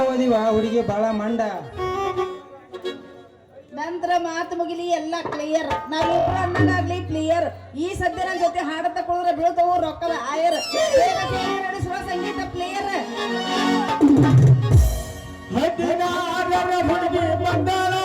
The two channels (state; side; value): identical; both; correlation 1.00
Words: ಓದಿವ ಹುಡುಗಿ ಬಾಳ ಮಂಡ. ನಂತರ ಮಾತು ಮುಗಿಲಿ ಎಲ್ಲ ಕ್ಲಿಯರ್. ನಾವಿಬ್ರು ಅನ್ನಗಾಗ್ಲಿ ಕ್ಲಿಯರ್. ಈ ಸದ್ಯ ನನ್ನ ಜೊತೆ ಹಾಡ ತಕೊಳ್ಳೋದ್ರ ಬೀಳ್ತವು ರೊಕ್ಕದ ಆಯರ್. ನಡೆಸುವ ಸಂಗೀತ ಪ್ಲೇಯರ್. ಹುಡುಗಿ ಬಂದಾಳ